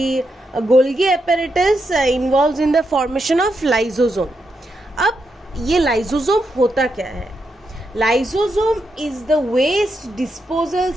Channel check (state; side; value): normal; both; correlation 0.83